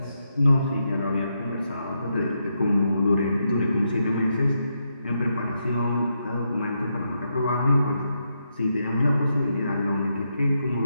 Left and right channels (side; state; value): both; inverted; correlation -0.82